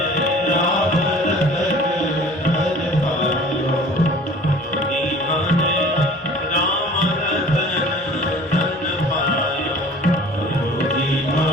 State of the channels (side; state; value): both; normal; correlation 0.46